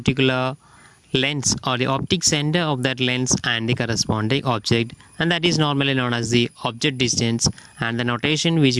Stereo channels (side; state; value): both; identical; correlation 1.00